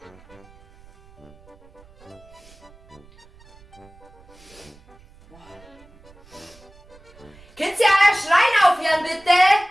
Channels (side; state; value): right; noise; rumble, 26 dB below the sound